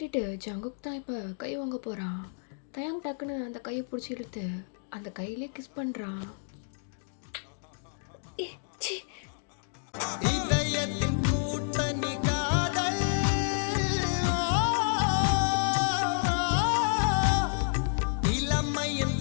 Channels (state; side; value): silent; right; digital silence